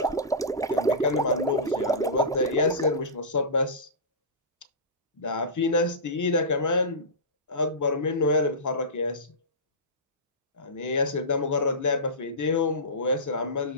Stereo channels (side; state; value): both; normal; correlation -0.20